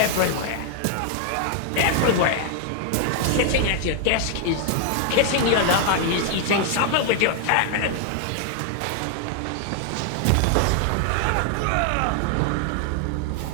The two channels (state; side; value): different; both; correlation 0.00